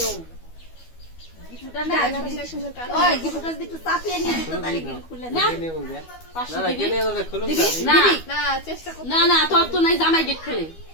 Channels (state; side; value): late; right; 12 ms